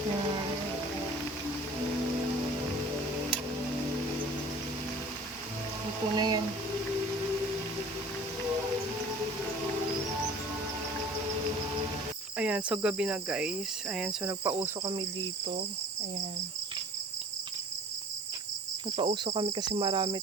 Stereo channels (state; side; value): normal; both; correlation 0.47